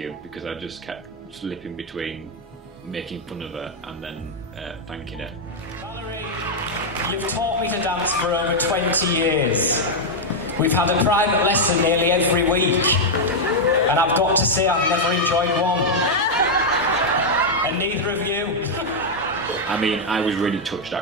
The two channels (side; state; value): both; normal; correlation -0.01